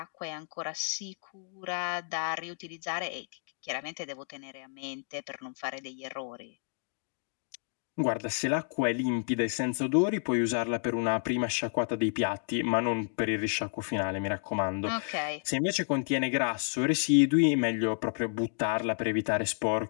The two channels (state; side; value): silent; right; digital silence